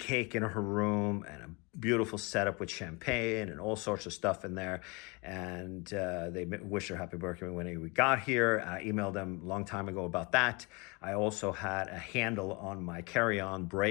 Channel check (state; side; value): quieter; right; 28.8 dB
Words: in her room and a beautiful setup with champagne and all sorts of stuff in there. And they wished her happy birthday when we got here. I emailed them a long time ago about that. I also had a handle on my carry-on